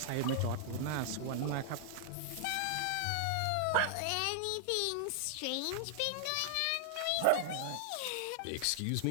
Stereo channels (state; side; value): different; both; correlation -0.01